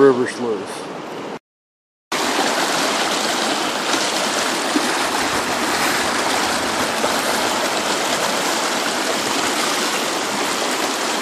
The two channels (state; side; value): identical; both; correlation 1.00